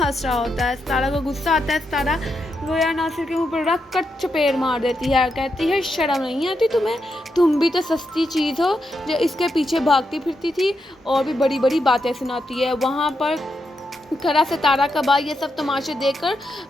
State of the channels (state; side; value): normal; both; correlation 0.84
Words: रहा होता है। सारा को गुस्सा आता है। सारा ज़ोया नासिर के मुंह पर रख कर चपेट मार देती है, कहती है शर्म नहीं आती तुम्हें, तुम भी तो सस्ती चीज़ हो जो इसके पीछे भागती फिरती थी और भी बड़ी बड़ी बातें सुनाती है। वहाँ पर खरा सितारा का भाई ये सब तमाशे देखकर